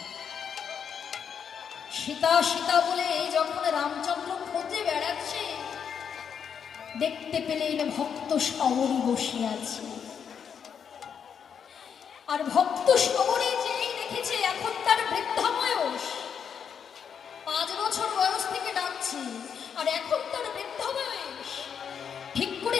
সীতা সীতা বলে যখন রামচন্দ্র খোঁজে বেড়াচ্ছে, দেখতে পেলেন ভক্ত সবরী বসে আছে। আর ভক্ত সবরী যেই দেখেছে এখন তার বৃদ্ধা বয়স, 5 বছর বয়স থেকে ডাকছে, আর এখন তার বৃদ্ধা বয়স, ঠিক করে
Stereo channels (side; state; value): right; quieter; 7.4 dB